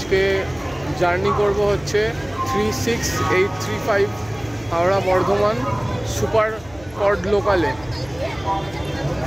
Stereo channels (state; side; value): noise; left; hum, 22 dB below the sound